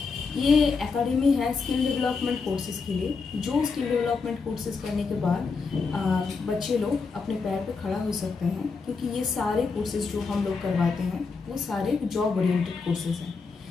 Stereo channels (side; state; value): right; quieter; 4.7 dB